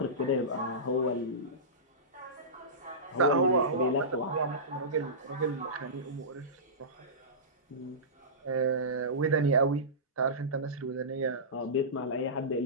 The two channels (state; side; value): normal; both; correlation -0.20